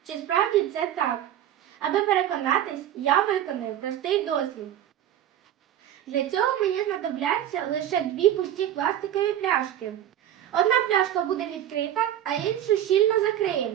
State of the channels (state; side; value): quieter; left; 11.3 dB